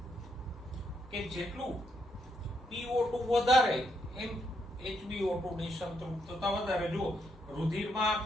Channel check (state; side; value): normal; both; correlation 0.77